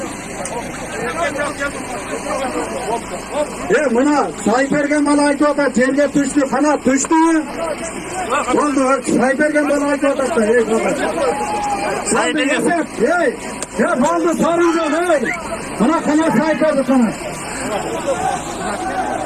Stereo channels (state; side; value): identical; both; correlation 1.00